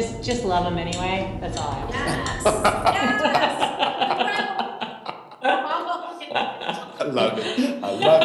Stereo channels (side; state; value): both; identical; correlation 1.00